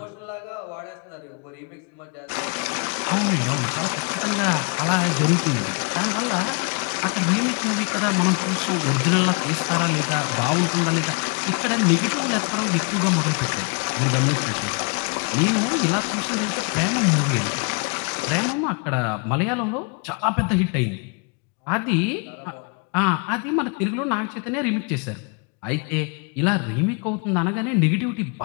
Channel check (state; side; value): quieter; right; 35.9 dB